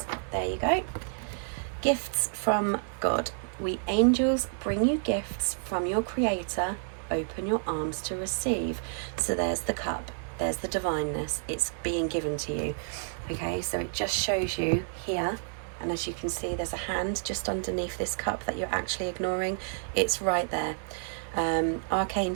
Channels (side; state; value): left; silent; digital silence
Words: There you go. Gifts from God. We angels bring you gifts from your Creator. Open your arms to receive. So there's the cup. There's the divineness. It's being given to you. Okay, so it just shows you here. And as you can see, there's a hand just underneath this cup that you're actually ignoring. It's right there.